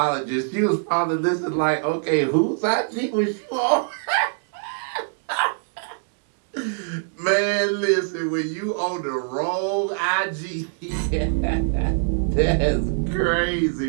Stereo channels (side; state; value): left; silent; digital silence